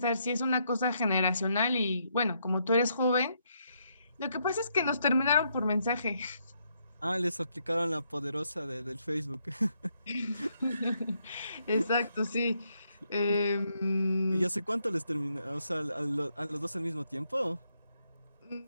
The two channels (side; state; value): both; inverted; correlation -0.76